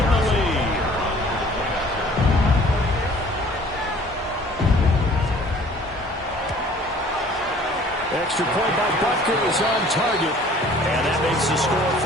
the lead. Extra point by Butker is on target. And that makes the score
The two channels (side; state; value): both; normal; correlation 0.52